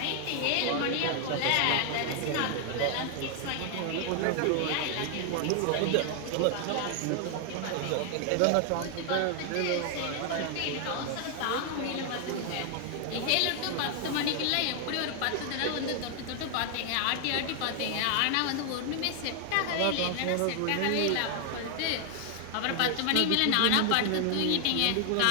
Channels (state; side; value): different; both; correlation 0.00